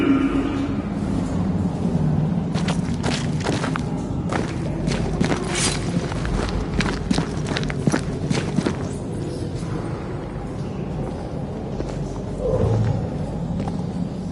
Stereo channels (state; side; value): identical; both; correlation 1.00